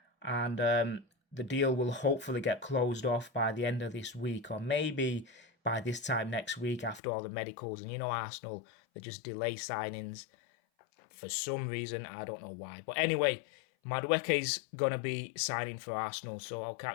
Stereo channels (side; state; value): right; drops out; at 7.0 s